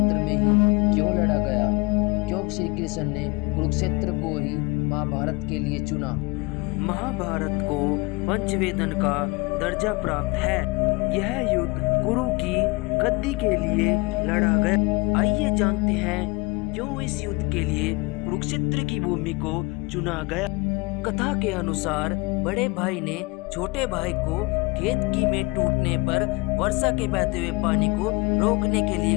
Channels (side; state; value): right; quieter; 24.5 dB